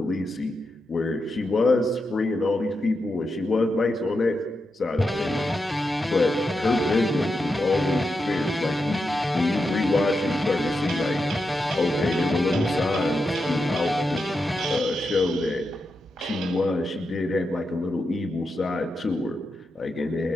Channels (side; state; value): both; normal; correlation 0.87